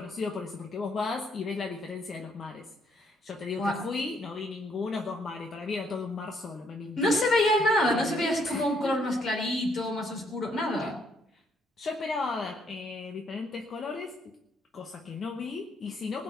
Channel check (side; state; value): both; normal; correlation 0.70